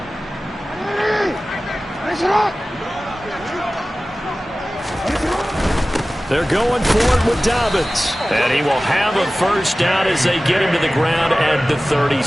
They're going for it with Dobbins. And he will have a first down as they get him to the ground at the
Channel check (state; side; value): normal; both; correlation 0.97